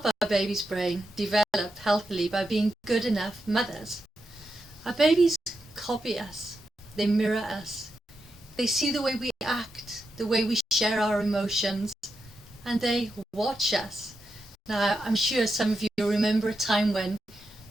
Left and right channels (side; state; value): both; normal; correlation 0.86